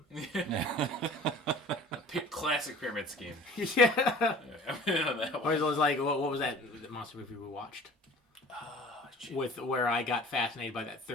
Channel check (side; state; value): both; normal; correlation 0.45